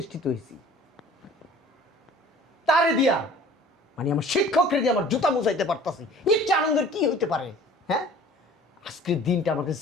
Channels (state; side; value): normal; both; correlation 0.48